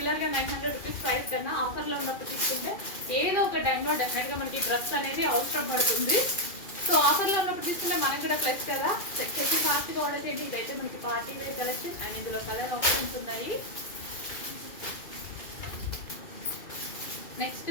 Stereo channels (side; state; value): right; late; 2.4 ms